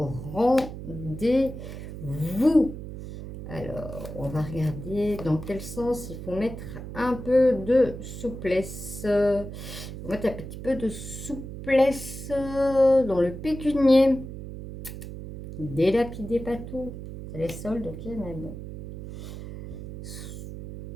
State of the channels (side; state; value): right; noise; hum, 10 dB below the sound